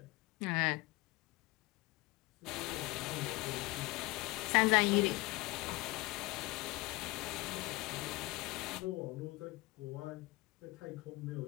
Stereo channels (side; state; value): right; quieter; 22.4 dB